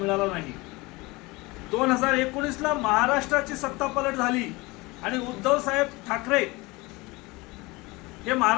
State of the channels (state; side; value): quieter; right; 23.4 dB